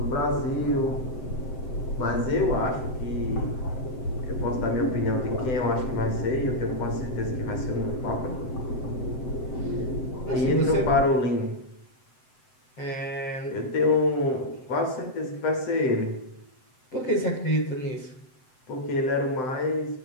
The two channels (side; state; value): right; late; 7.8 ms